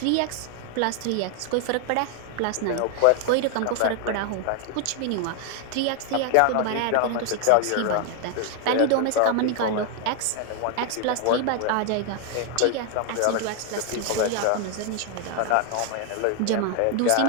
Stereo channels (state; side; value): different; both; correlation 0.00